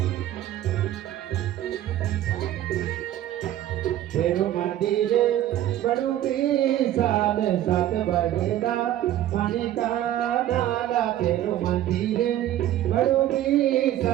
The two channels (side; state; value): left; quieter; 12.7 dB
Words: तेरु मंदिर बड़ू विशाल सात भगदा पानी का नाला। तेरु मंदिर बड़ू